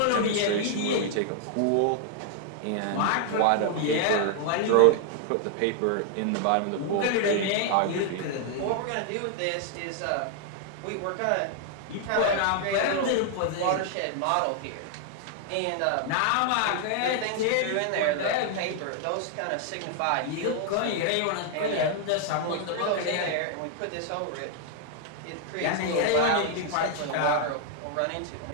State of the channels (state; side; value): different; both; correlation 0.00